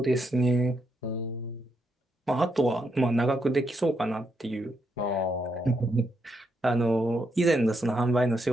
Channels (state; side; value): normal; both; correlation 0.79